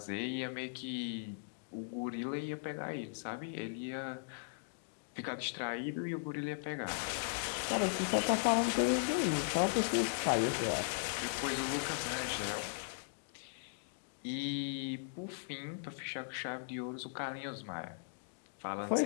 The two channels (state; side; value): silent; right; digital silence